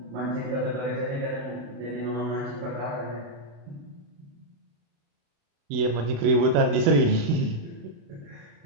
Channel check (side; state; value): left; late; 36 ms